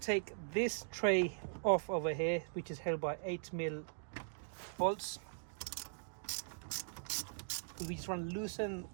to take this tray off over here, which is held by 8mm bolts. We just want to loosen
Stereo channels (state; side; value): silent; left; digital silence